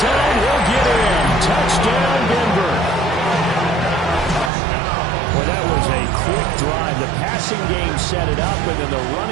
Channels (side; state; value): left; drops out; at 4.5 s